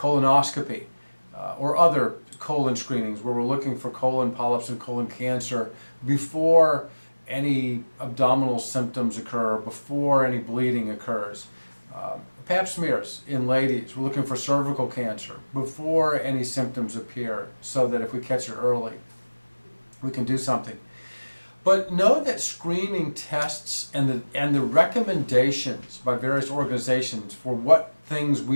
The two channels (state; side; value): inverted; both; correlation -1.00